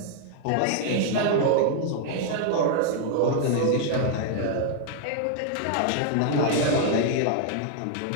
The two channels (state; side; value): different; both; correlation 0.00